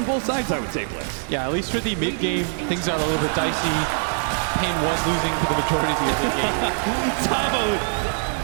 both sides, I would say, Blitz. Yeah, at least for the mid game, things got a little bit dicey. Pain was losing for the majority of the early game. Tavo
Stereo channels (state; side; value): silent; left; digital silence